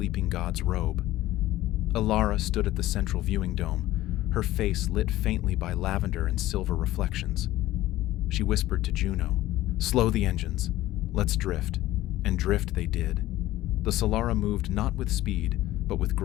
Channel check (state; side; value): quieter; right; 15.8 dB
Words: god's robe. Alara stood at the central viewing dome, her face lit faintly by lavender and silver reflections. She whispered to Juno, "Slow the engines. Let's drift." And drift they did. The Solara moved not with speed, but with